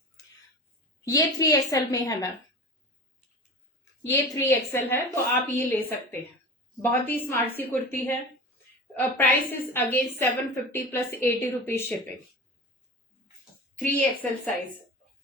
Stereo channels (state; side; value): normal; both; correlation 0.32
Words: ये 3XL में है मैम, ये 3XL है तो आप ये ले सकते हैं, बहुत ही स्मार्ट सी कुर्ती है। Price is again 750 plus 80 rupees shipping, 3XL size.